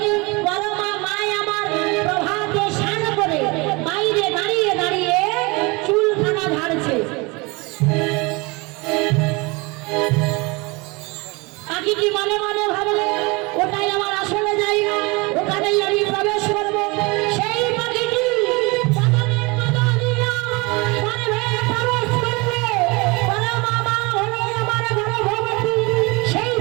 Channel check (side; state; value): left; quieter; 26.3 dB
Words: পরমা মায় আমার প্রভাতে স্নান করে বাইরে দাঁড়িয়ে দাঁড়িয়ে চুলখানা ঝাড়ছে। পাখিটি মনে মনে ভাবলে ওটাই আমার আসলে জায়গা, ওখানেই আমি প্রবেশ করবো। সেই পাখিটি বাগানের মতো দিয়া গর্ভে প্রবেশ করলে পরমা মা হলো আমার গর্ভবতী। সেই